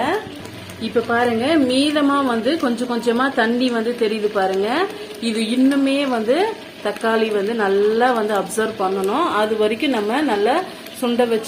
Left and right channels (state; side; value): identical; both; correlation 1.00